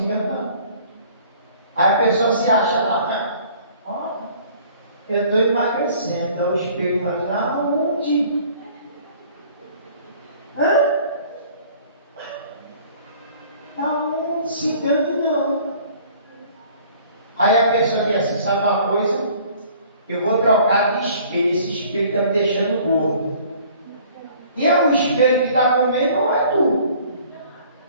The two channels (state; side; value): inverted; both; correlation -0.53